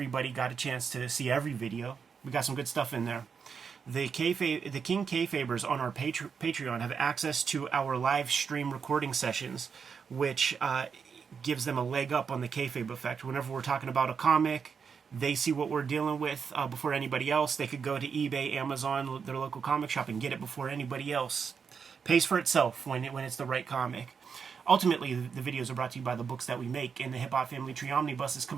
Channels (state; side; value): quieter; left; 6.2 dB